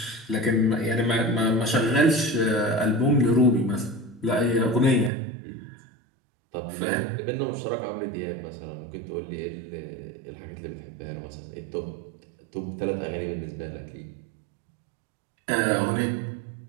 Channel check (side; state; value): left; drops out; at 5.1 s